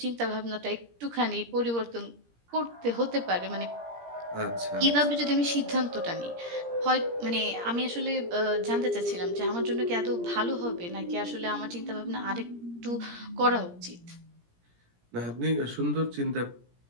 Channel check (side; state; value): left; late; 17 ms